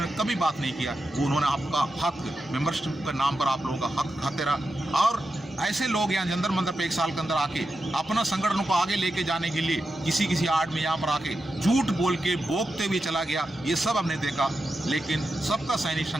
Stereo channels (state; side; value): normal; both; correlation 0.89